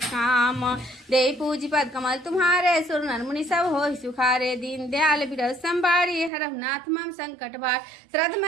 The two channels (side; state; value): left; drops out; at 6.3 s